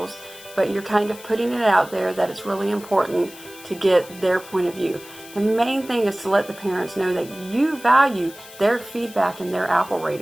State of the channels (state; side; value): noise; left; hiss, 18 dB below the sound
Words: but you're kind of putting it out there that it's really important to get their point of view. The main thing is to let the parents know that you value their feedback and their apple